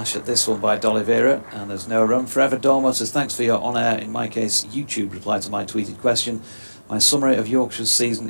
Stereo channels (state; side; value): inverted; both; correlation -1.00